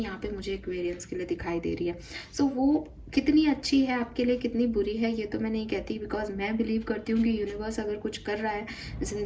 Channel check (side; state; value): both; identical; correlation 1.00